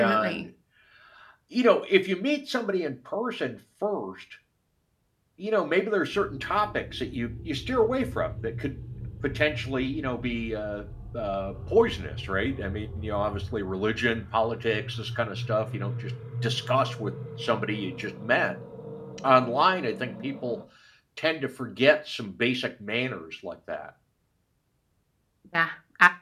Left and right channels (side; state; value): both; identical; correlation 1.00